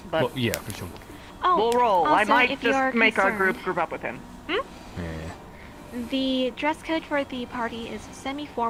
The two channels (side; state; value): both; identical; correlation 1.00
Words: But Well, yeah, for some. we'll roll. I also, might if just you're make our concerned- group up with him. The dress code for the party is